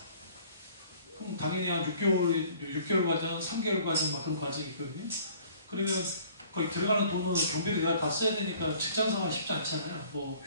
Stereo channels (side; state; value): both; inverted; correlation -0.53